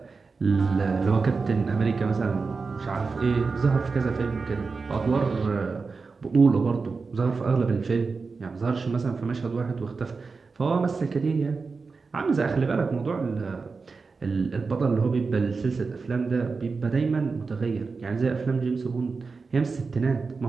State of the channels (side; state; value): left; quieter; 4.5 dB